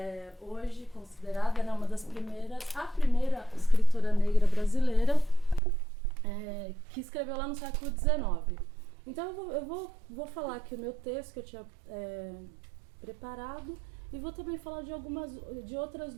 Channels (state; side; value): drops out; left; at 5.6 s